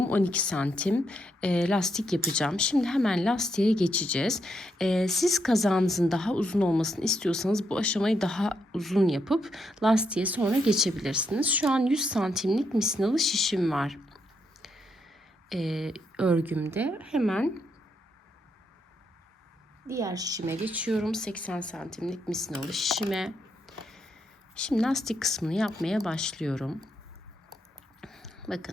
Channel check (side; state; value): both; normal; correlation 0.79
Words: 12 santim lastik yapacağım. Şimdi hemen lastiğe geçeceğiz. Siz kazağınızın daha uzun olmasını istiyorsanız bu aşamayı daha uzun yapıp lastiğe sonra geçebilirsiniz. Şu an 100 santimlik misinalı şişim var. Örgümde hemen diğer şişime geçiyorum. 80 santimlik misinalı şişime. Şimdi lastik kısmını yapmaya başlıyorum.